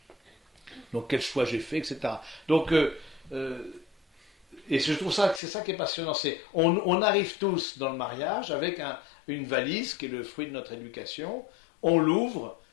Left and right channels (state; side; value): drops out; right; at 5.4 s